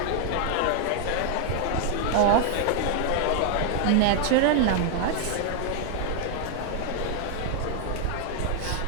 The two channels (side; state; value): both; different; correlation 0.00